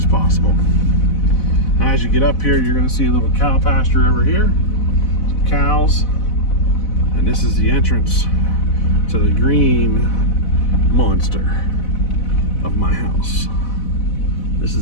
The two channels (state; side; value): late; right; 4.0 ms